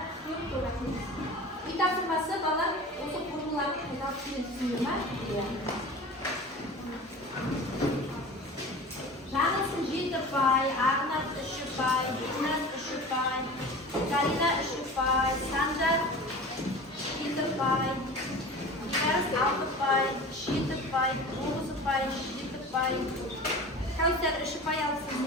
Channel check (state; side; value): normal; both; correlation 0.36